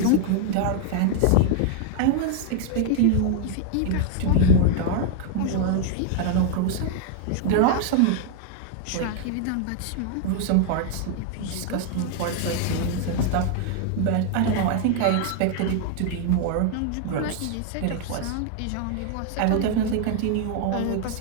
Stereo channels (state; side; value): different; both; correlation 0.00